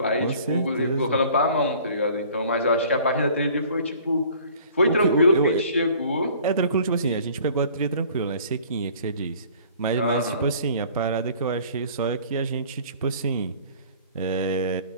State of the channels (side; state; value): both; inverted; correlation -0.51